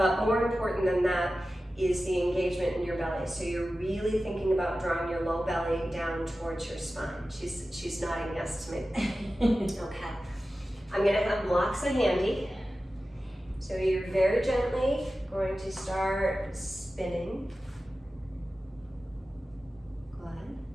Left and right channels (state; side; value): normal; both; correlation 0.94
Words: more important than that, is the engagement in your belly. So you're really thinking about drawing your low belly down towards your spine. She's nodding yes to me. Okay. I'm gonna have blocks handy. So you're very gently going to start spinning. Good.